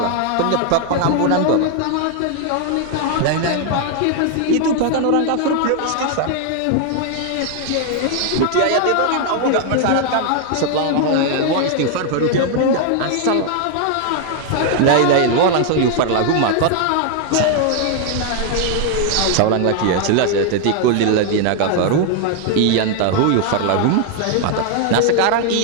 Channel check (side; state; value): both; different; correlation 0.00